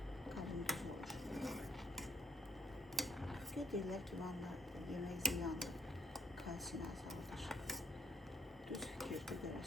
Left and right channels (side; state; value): both; normal; correlation 0.68